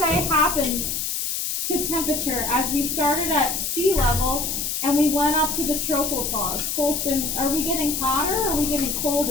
happened to temperature as we started at sea level and we went up to the tropopause? Colston, are we getting hotter or are we getting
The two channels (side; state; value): left; noise; hiss, 2 dB below the sound